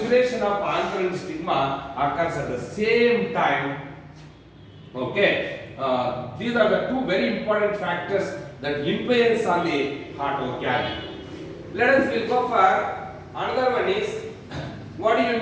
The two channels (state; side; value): identical; both; correlation 1.00